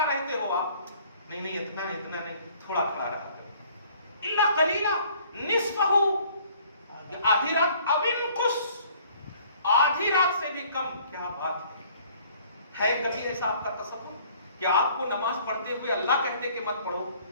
رہتے ہو آپ؟ نہیں اتنا نہیں تھوڑا کھڑا رہا کرو. الا قلیلا نصفہ، آدھی رات، او انقص، آدھی رات سے بھی کم. کیا بات ہے کبھی ایسا آپ کا تصور کہ آپ کو نماز پڑھتے ہوئے اللہ کہتے کہ مت پڑھو؟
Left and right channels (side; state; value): both; inverted; correlation -0.57